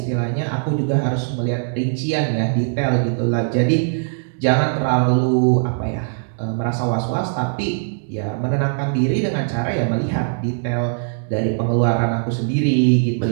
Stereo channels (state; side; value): silent; left; digital silence